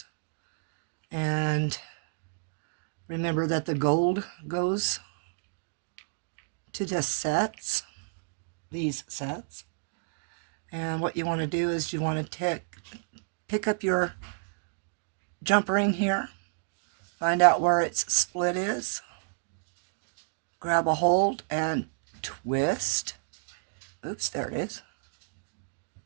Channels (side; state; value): left; silent; digital silence